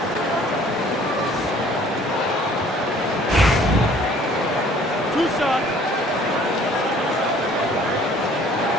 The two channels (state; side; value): normal; both; correlation 0.55